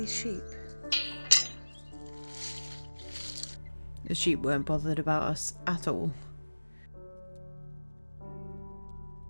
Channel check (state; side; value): inverted; both; correlation -1.00